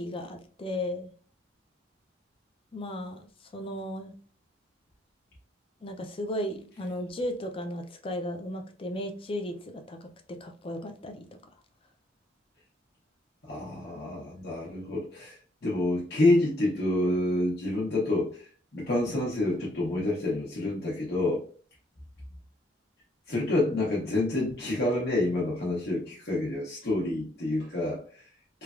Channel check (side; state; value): both; normal; correlation 0.70